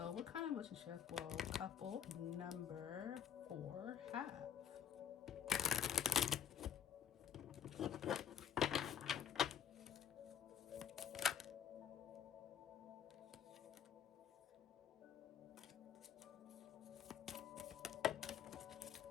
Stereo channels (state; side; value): quieter; right; 8.9 dB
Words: what kind of relationship will couple number 4 have?